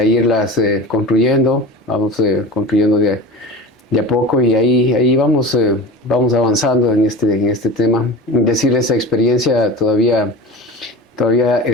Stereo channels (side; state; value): both; normal; correlation 0.32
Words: irlas construyendo. Vamos construyendo de a poco, y ahí vamos avanzando en este tema. Es decir, esa experiencia todavía